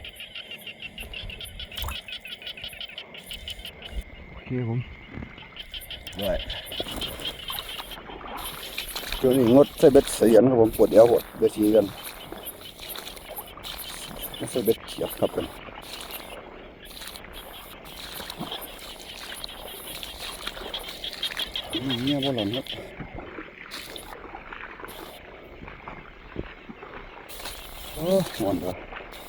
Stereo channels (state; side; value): identical; both; correlation 1.00